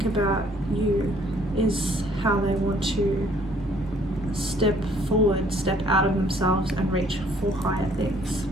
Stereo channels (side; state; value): both; normal; correlation 0.61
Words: about you, is how they want to step forward, step out of themselves and reach for higher things.